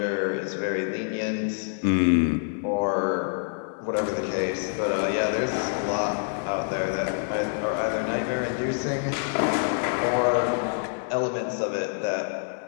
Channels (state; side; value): silent; right; digital silence